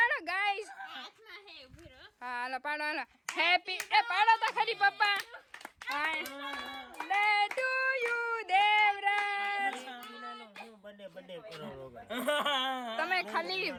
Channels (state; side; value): identical; both; correlation 1.00